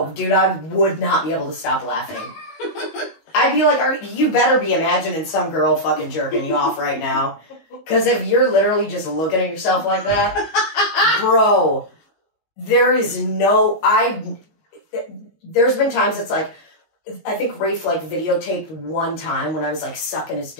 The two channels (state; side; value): late; right; 19 ms